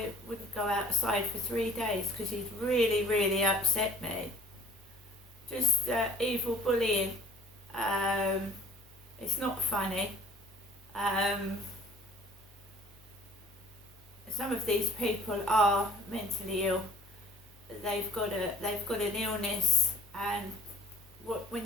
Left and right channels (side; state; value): both; normal; correlation 0.50